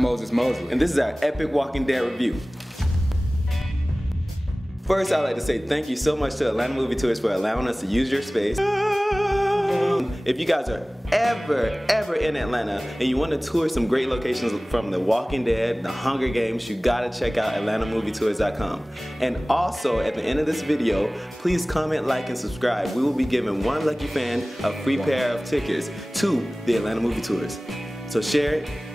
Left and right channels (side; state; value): both; normal; correlation 0.98